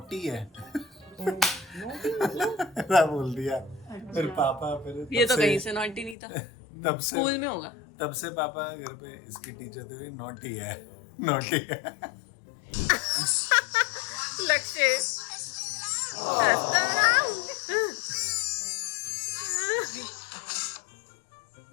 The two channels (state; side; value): drops out; right; at 6.2 s